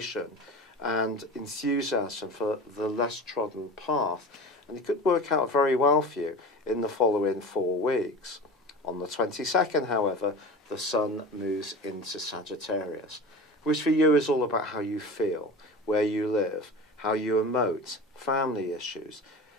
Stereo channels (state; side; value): normal; both; correlation 0.33